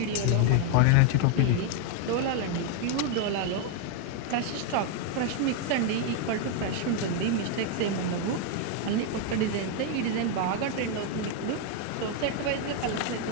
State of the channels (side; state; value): both; different; correlation 0.01